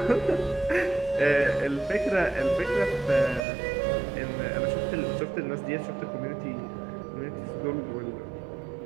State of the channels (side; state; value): left; drops out; at 3.4 s